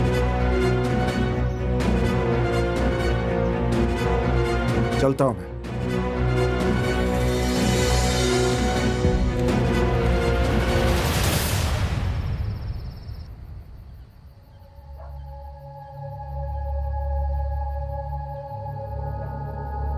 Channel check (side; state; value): both; identical; correlation 1.00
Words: चलता हूं मैं।